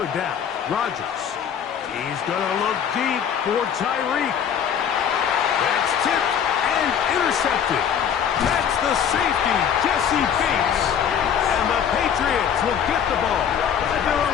down, Rodgers. He's going to look deep for Tyreek. That's tipped and intercepted. That's the safety, Jesse Bates. And the Patriots will get the ball at their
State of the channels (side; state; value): right; quieter; 8.3 dB